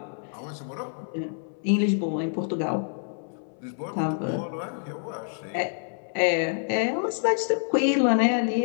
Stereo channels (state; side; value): silent; right; 60 dB below the other